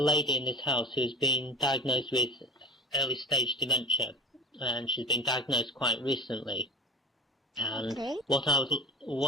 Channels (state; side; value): normal; both; correlation 0.33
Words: in this house who has been diagnosed with early stage dementia, and she's been diagnosed quite recently. And Okay. what